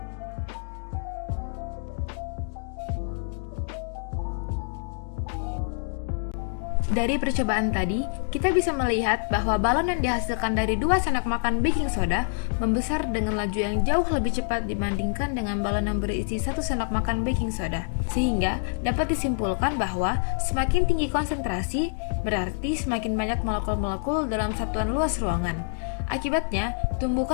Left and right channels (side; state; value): right; silent; digital silence